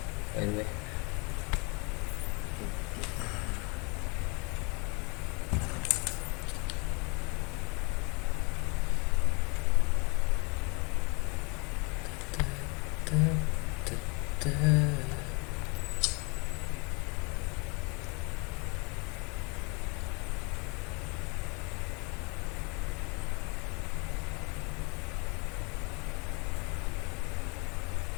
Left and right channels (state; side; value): quieter; right; 30.4 dB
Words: By the way.